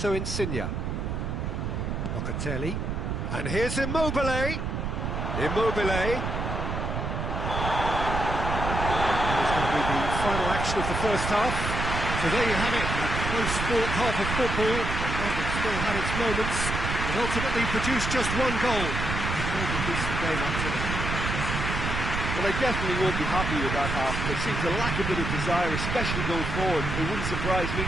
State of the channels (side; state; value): right; noise; rumble, 2 dB below the sound